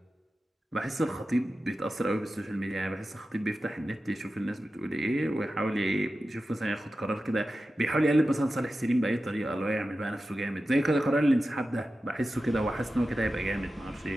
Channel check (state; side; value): normal; both; correlation 0.93